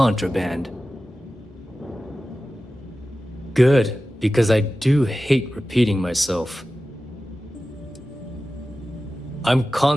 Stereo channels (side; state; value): both; normal; correlation 0.95